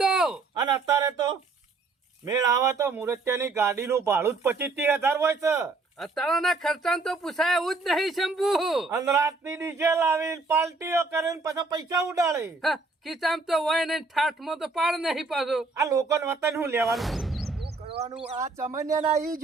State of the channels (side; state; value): left; quieter; 3.8 dB